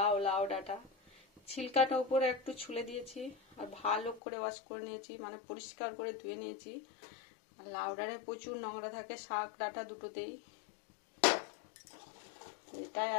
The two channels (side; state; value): right; drops out; at 4.2 s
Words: লাউ ডাঁটা ছিলকাটা উপরে একটু ছুলে দিয়েছি আর ভালো করে ওয়াশ করে নিয়েছি, মানে পরিষ্কার করে ধুয়ে নিয়েছি। আর লাউ ডাঁটায় প্রচুর নোংরা থাকে, শাক ডাঁটা দুটোতেই। এটাই